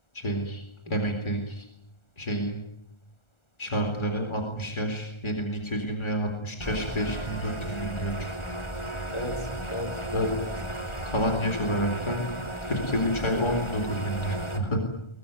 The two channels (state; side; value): late; right; 1.4 ms